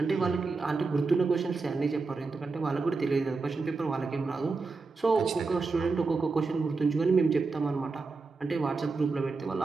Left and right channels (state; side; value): quieter; left; 4.1 dB